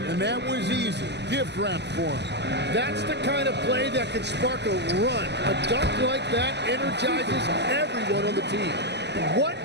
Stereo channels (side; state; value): left; late; 0.50 ms